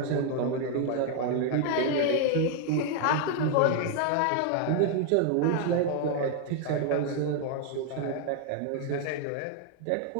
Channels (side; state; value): both; different; correlation 0.00